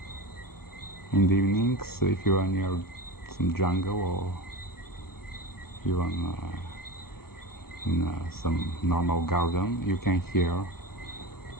In the evenings, if you are near some jungle or even in some normal garden, you can hear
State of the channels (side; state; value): right; late; 0.94 ms